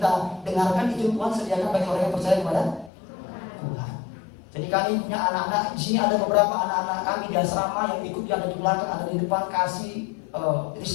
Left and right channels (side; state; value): right; drops out; at 2.9 s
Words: dengarkan, itu Tuhan sediakan bagi orang yang percaya kepada Tuhan. Jadi kami punya anak-anak, di sini ada beberapa anak-anak kami di asrama yang ikut, ada di belakang, ada di depan, kasih,